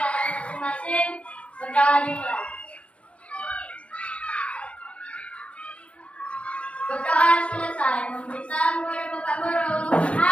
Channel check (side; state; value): right; late; 0.061 ms